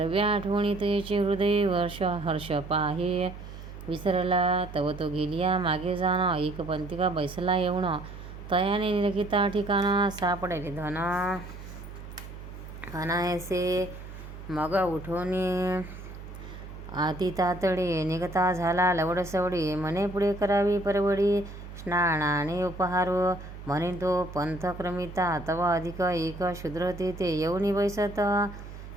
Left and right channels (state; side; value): noise; right; hum, 13 dB below the sound